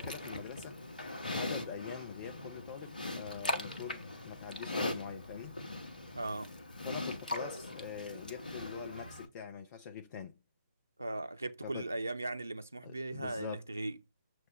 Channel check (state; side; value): inverted; both; correlation -0.66